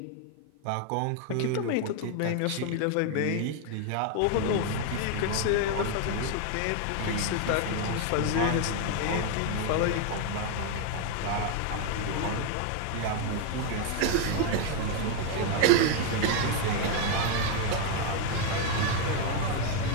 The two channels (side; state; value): both; different; correlation 0.01